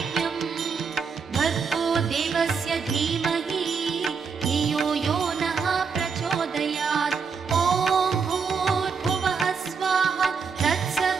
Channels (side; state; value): left; quieter; 5.7 dB